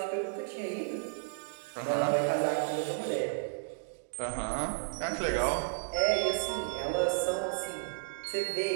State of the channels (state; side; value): silent; left; digital silence